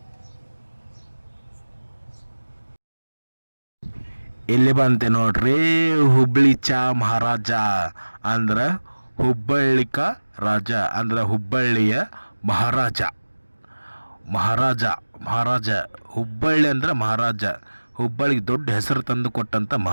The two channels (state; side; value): inverted; both; correlation -1.00